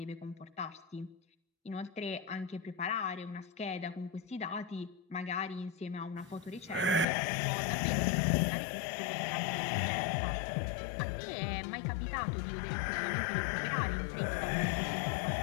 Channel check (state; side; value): drops out; right; at 7.1 s